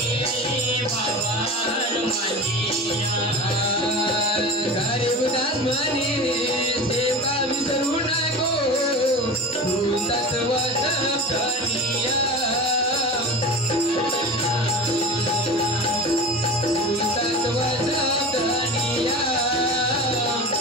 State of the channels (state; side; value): normal; both; correlation 0.31